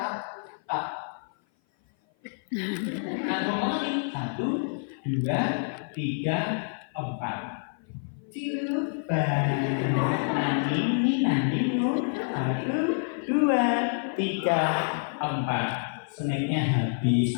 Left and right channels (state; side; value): silent; right; 55 dB below the other